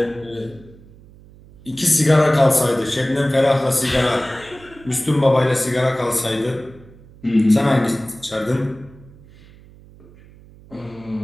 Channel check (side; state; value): right; noise; hum, 23 dB below the sound